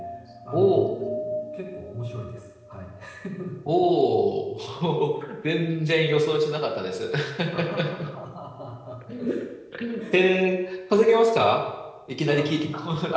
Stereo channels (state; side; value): identical; both; correlation 1.00